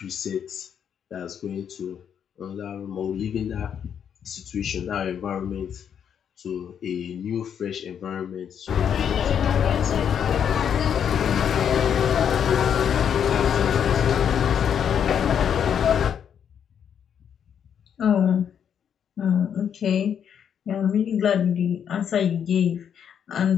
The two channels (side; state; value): right; quieter; 8.3 dB